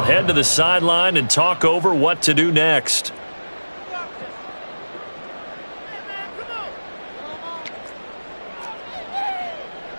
head to the sideline and talk over what to do next.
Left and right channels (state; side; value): inverted; both; correlation -1.00